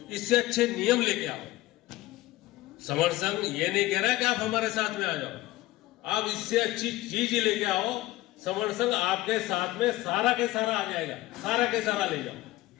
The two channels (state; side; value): quieter; right; 17.5 dB